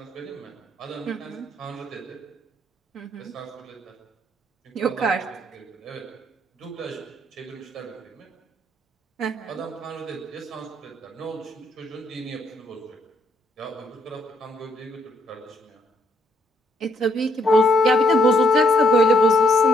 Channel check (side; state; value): both; normal; correlation 0.71